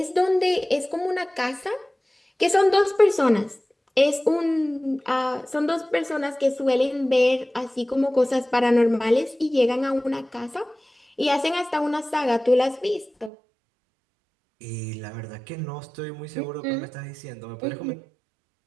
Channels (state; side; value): drops out; left; at 13.3 s